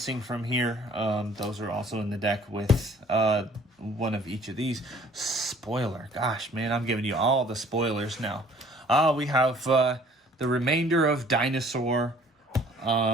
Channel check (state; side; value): normal; both; correlation 0.55